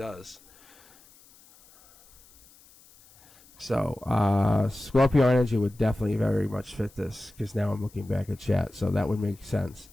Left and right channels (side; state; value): left; noise; hiss, 26 dB below the sound